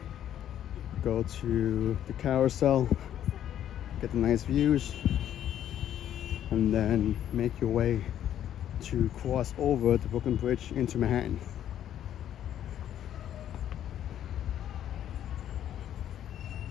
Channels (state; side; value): quieter; right; 10.8 dB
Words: go to the carousel, get the nice views, and then make your way to cross over the Brooklyn Bridge into Manhattan.